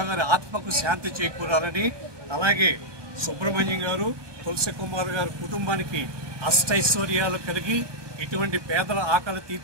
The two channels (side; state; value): left; late; 1.2 ms